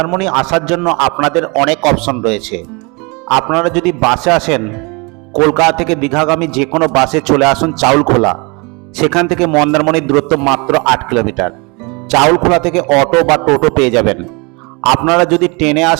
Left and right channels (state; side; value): quieter; left; 29.1 dB